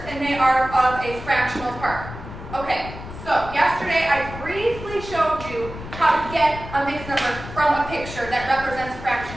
and they are of a fractional part. Okay, so yesterday I briefly showed you how to get a mixed number from a picture that represents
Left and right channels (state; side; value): noise; left; rumble, 12 dB below the sound